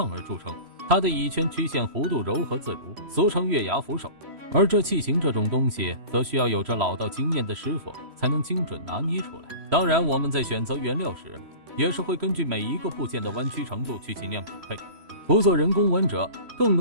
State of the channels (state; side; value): late; left; 3.0 ms